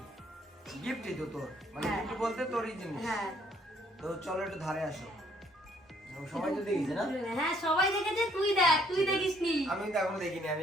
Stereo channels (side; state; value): both; normal; correlation 0.65